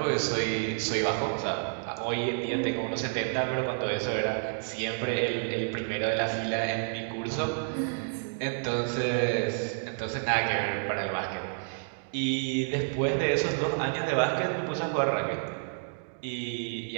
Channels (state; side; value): silent; left; digital silence